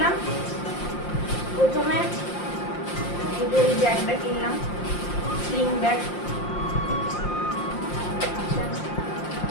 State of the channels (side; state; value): right; late; 5.7 ms